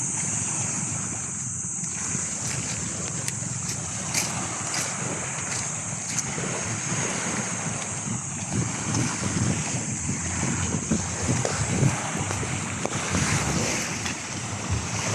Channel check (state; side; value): identical; both; correlation 1.00